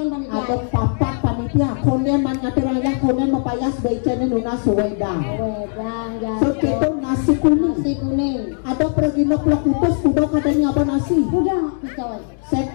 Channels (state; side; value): silent; right; digital silence